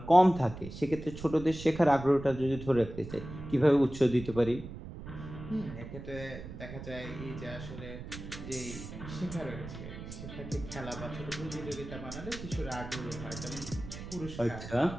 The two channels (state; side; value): noise; right; rumble, 11 dB below the sound